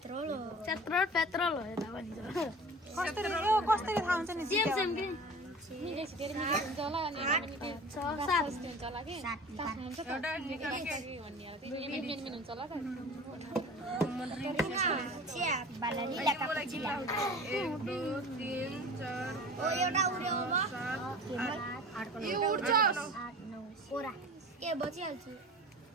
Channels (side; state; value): both; normal; correlation 0.39